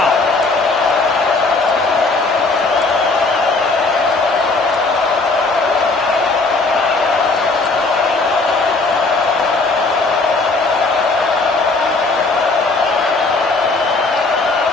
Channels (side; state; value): right; quieter; 3.6 dB